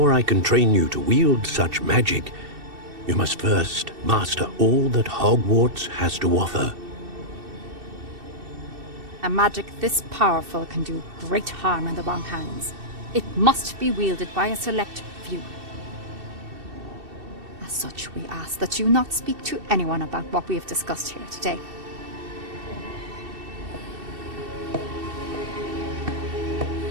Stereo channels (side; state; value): left; late; 2.7 ms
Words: I can train you to wield such magic, you must first master all that Hogwarts has to offer. A magic this powerful can do great harm in the wrong hands. It must be wielded by a select few. As such, we ask that you not speak to anyone about what we have discussed here today.